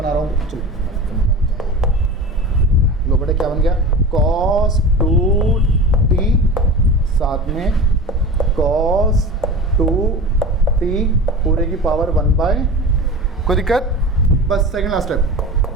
रहा हूँ। चलो लो बेटा क्या बन गया कॉस 2t साथ में कॉस 2t पूरे की पावर 1/, कोई दिक्कत? बस second last step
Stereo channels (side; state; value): both; normal; correlation 0.32